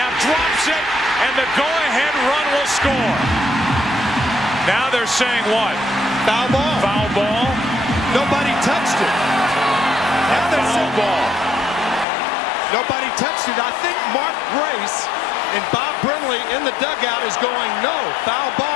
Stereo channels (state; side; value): drops out; right; at 12.1 s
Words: drops it, and the go-ahead run will score. Now they're saying what? Foul ball. Foul ball. Nobody touched it. Now they're saying ball. Nobody touched it. I think Mark Grace and Bob Brimley in the dugout is going, no, foul